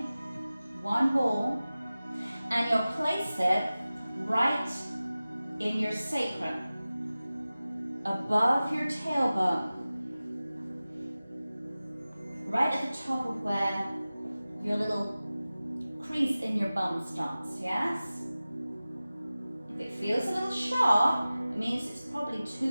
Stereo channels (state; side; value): inverted; both; correlation -0.97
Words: One ball, and you'll place it right in your sacrum, above your tailbone, right at the top of where your little crease in your bum starts, yes? If it feels a little sharp, it means it's probably